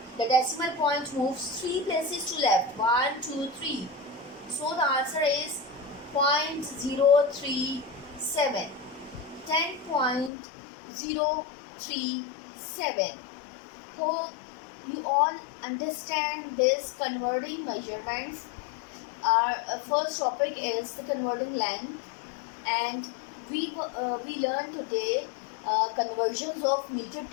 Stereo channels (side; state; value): right; drops out; at 10.3 s